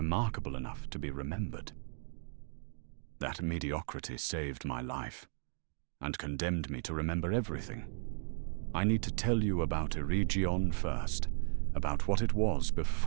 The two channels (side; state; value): left; silent; 54 dB below the other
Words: enough to be remembered. That mediocrity saved my life, and condemned me to remember everything. I need to tell you about Eregion first, about what it was